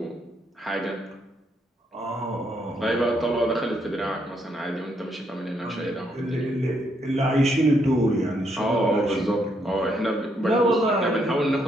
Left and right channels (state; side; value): normal; both; correlation 0.75